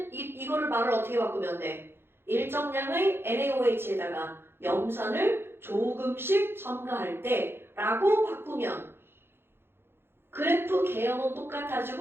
이거를 말을 어떻게 바꾸면 돼? 일정량의 NaOH에다가 염산을 조금씩 첨가할 때 라고 바꾸면 그래프 개형은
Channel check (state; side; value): late; left; 0.11 ms